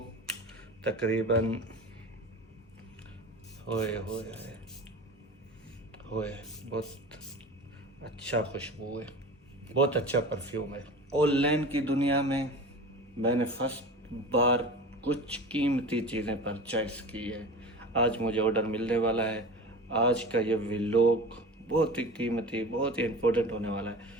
तकरीबन होए होए होए बहुत अच्छा खुशबू है, बहुत अच्छा परफ्यूम है। ऑनलाइन की दुनिया में मैंने फर्स्ट बार कुछ कीमती चीज़ें परचेस की है। आज मुझे ऑर्डर मिलने वाला है। आज का ये व्लॉग बहुत ही कीमती, बहुत ही इम्पोर्टेंट होने वाला है।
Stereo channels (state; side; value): normal; both; correlation 0.34